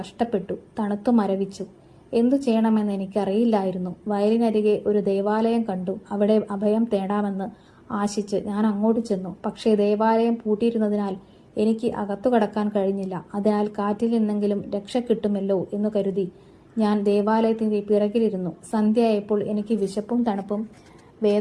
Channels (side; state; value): both; identical; correlation 1.00